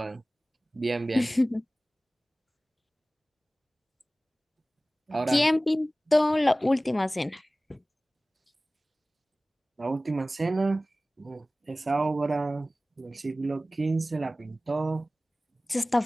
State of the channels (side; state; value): both; normal; correlation 0.97